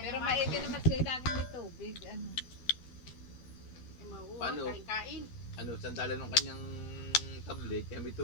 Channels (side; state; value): right; late; 12 ms